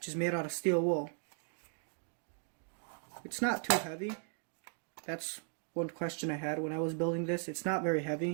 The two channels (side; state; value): left; silent; 53 dB below the other